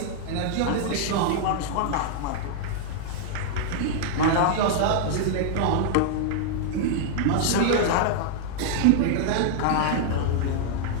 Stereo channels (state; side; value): different; both; correlation -0.01